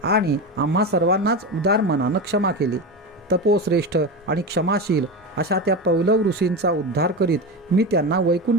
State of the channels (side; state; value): both; normal; correlation 0.21